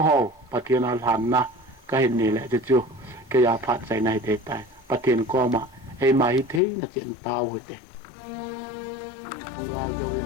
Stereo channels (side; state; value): right; drops out; at 6.6 s